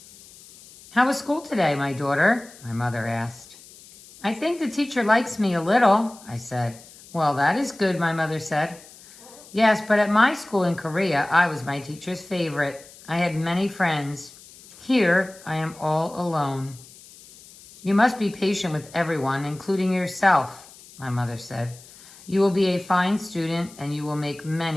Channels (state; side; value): noise; left; hiss, 21 dB below the sound